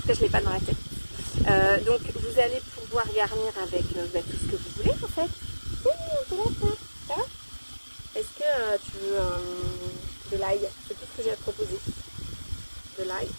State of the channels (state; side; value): inverted; both; correlation -1.00